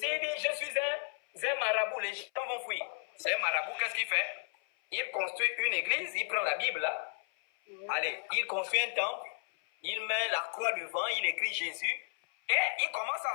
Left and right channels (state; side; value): silent; right; 55 dB below the other